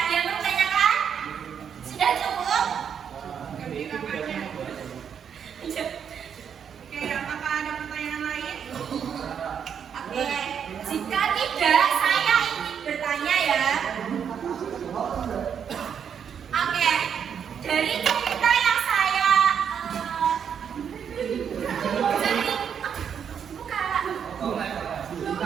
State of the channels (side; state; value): left; quieter; 7.8 dB